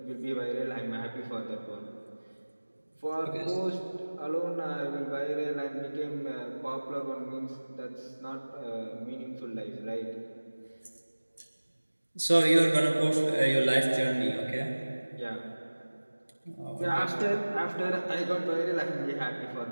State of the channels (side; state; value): both; inverted; correlation -1.00